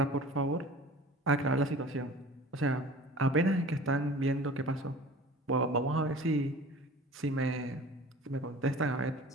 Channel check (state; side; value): normal; both; correlation 0.42